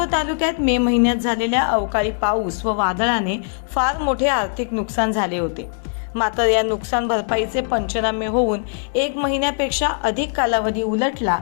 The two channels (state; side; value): silent; right; digital silence